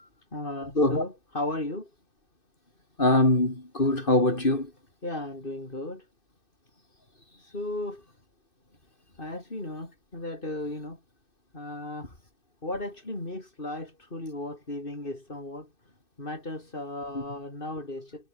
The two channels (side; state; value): right; late; 2.6 ms